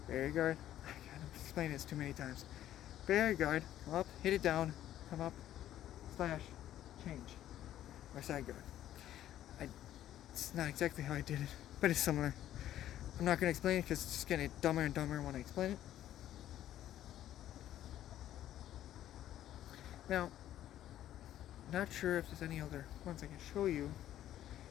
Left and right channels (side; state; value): right; quieter; 12.3 dB